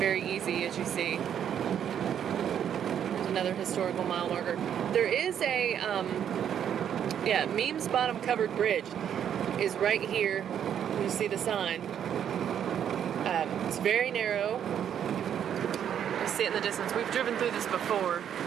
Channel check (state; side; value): quieter; left; 9.2 dB